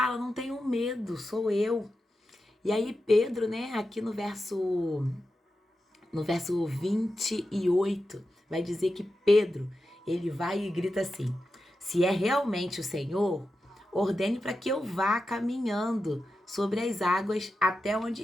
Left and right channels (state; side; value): normal; both; correlation 0.90